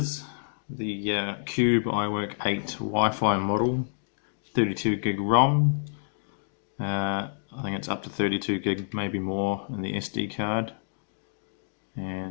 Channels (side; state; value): right; silent; digital silence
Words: The Cube iWork 8 Wi-Fi model, 32 gig ROM. I think it's up to 32 gig, maybe more, in the SD card.